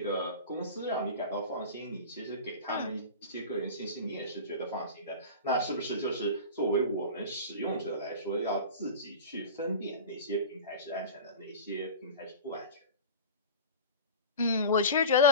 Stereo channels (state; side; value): inverted; both; correlation -0.31